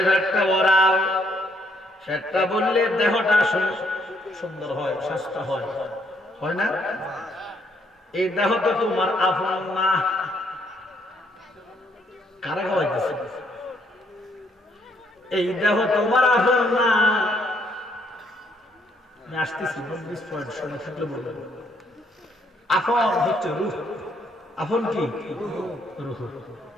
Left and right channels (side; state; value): both; normal; correlation 0.70